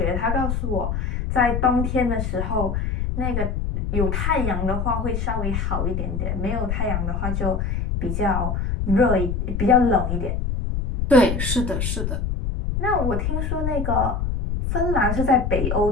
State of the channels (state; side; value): noise; left; rumble, 1 dB below the sound